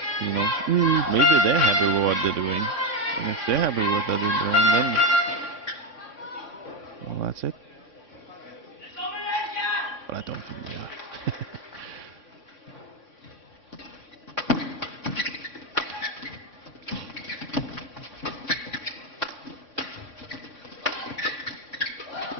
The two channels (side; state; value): left; late; 3.6 ms